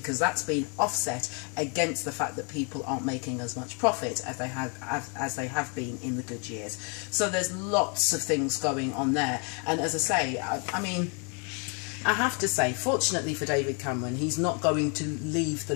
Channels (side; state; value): right; quieter; 36.4 dB